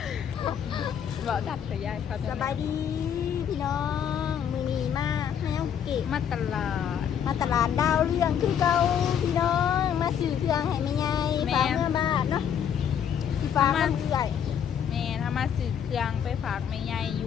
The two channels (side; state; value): right; quieter; 8.5 dB